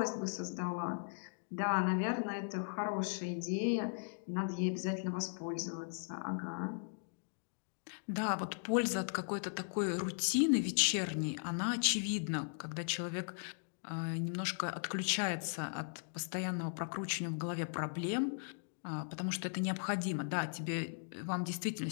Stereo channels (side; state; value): right; silent; digital silence